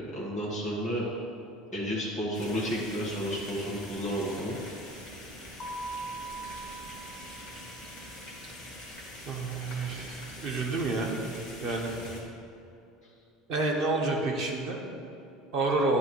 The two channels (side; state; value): both; normal; correlation 0.43